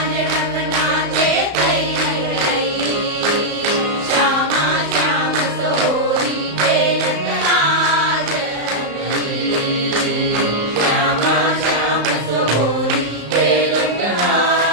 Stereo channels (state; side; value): late; left; 35 ms